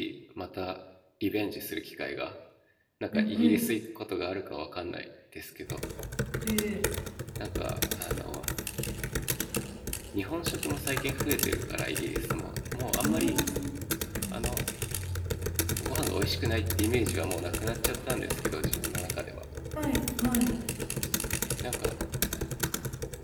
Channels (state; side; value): identical; both; correlation 1.00